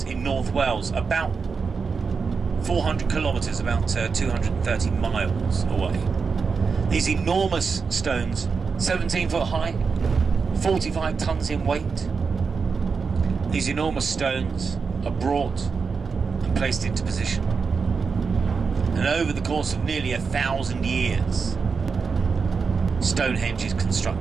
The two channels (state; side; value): quieter; left; 5.2 dB